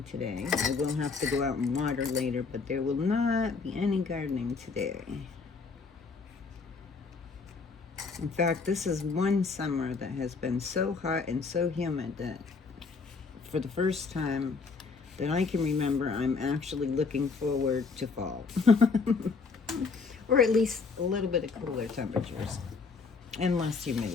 today. I will have to go out and water later, but there will not be any gardening today. In fact, this is one summer that has been so hot and so humid that for the first time that I can remember, I'm actually looking forward to fall. Or at least a little bit of cooler temperatures. And less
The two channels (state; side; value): quieter; right; 4.7 dB